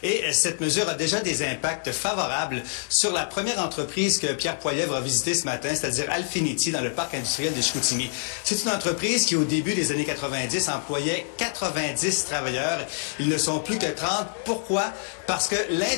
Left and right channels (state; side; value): silent; right; digital silence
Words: Et cette mesure a déjà des impacts favorables sur la première entreprise que Pierre Poilievre a visitée ce matin, c'est-à-dire Alfinity, dans le parc industriel de Chicoutimi. C'est une entreprise qui, au début des années 90, employait 90 travailleurs. Ils ne sont plus que 30. Pourquoi? Parce que